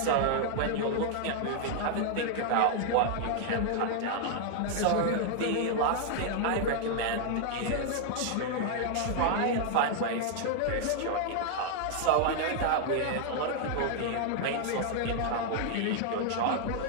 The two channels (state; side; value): different; both; correlation 0.00